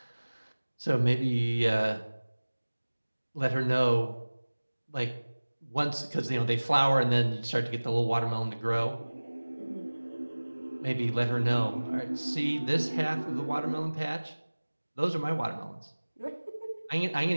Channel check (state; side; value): inverted; both; correlation -1.00